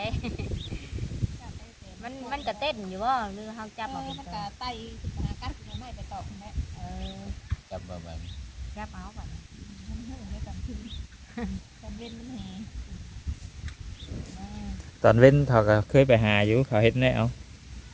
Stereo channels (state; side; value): identical; both; correlation 1.00